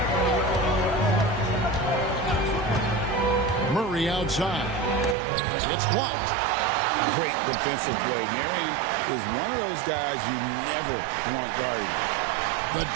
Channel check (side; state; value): left; drops out; at 5.2 s